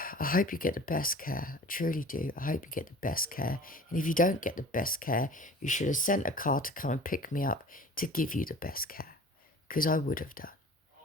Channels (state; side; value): normal; both; correlation 0.43